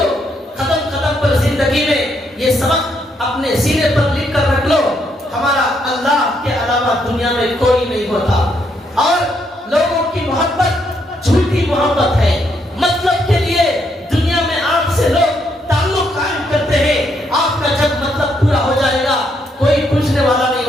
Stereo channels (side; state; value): both; normal; correlation 0.75